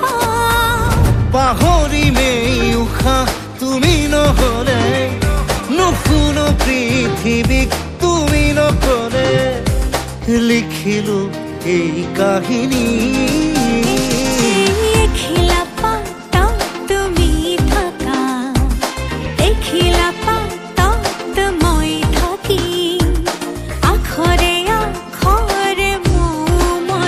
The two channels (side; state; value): both; identical; correlation 1.00